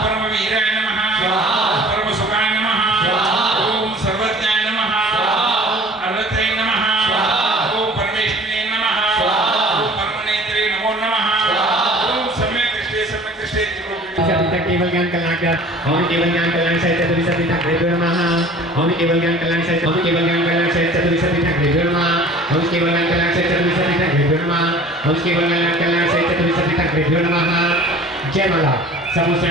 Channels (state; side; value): normal; both; correlation 0.47